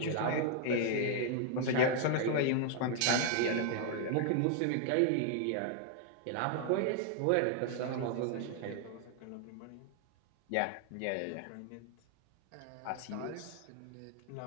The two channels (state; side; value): different; both; correlation 0.00